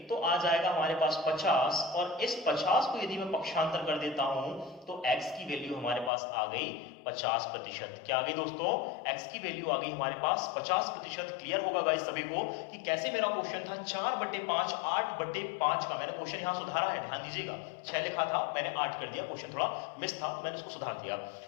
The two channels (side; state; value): right; drops out; at 6.1 s